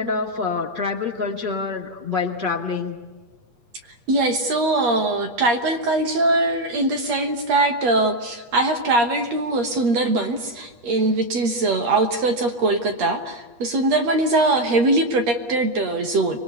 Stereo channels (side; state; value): left; late; 8.4 ms